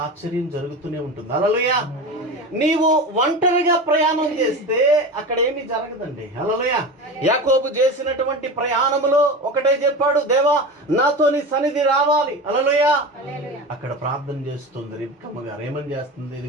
ఆశ్చర్యం జరుగుతూనే ఉంటుంది, హల్లెలూయా. నీవు ఒంటరిగా ప్రయాణం చేస్తే అక్కడ ఏమీ జరగదండి, హల్లెలూయా. యాకోబు చేసినటువంటి ప్రయాణములో ఒకటే చెప్పాడు, దేవా నాతో నీ సన్నిధి రావాలి, హల్లెలూయా. అక్కడ ప్రార్థన చేస్తుంది రిబ్కమ్మ గారు. ఏమని చేస్తుంది?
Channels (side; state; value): both; normal; correlation 0.28